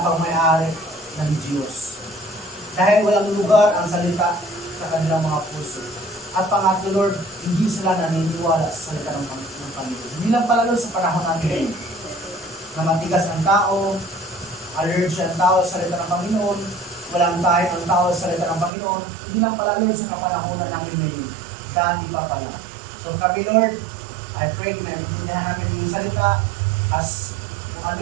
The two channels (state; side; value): drops out; left; at 18.7 s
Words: pang may-ari ng Diyos. Dahil walang lugar ang salita sa kanilang mga puso. At pangatlo, Lord, hindi sila naniniwala sa salita ng Panginoon. Hindi lang pala, Lord, sa panahon natin ngayon, na matigas ang tao, allergy ang tao sa salita ng Panginoon, walang tayo ang tao sa salita ng Panginoon, hindi lang pala, Lord, sa kapanahonan namin ngayon. Dati pa pala. So kami, Lord, I pray na naiintindihan namin yung salita as kung ano